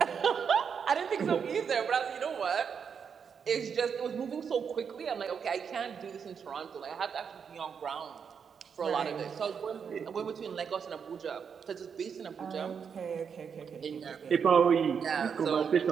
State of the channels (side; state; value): left; quieter; 6.7 dB